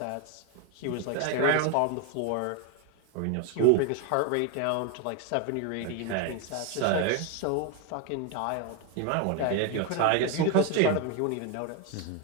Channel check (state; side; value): different; both; correlation 0.01